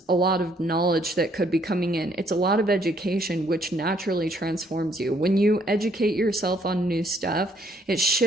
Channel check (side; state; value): both; normal; correlation 0.66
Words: a lot of knowledge that could be coming in. It's a lot of education, which naturally transforms you. When you educate yourself on new stuff, it